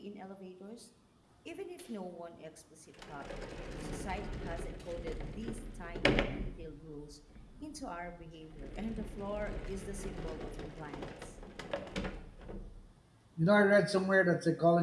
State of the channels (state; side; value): identical; both; correlation 1.00